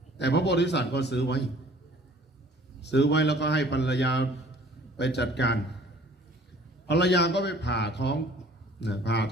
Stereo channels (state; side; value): normal; both; correlation 0.52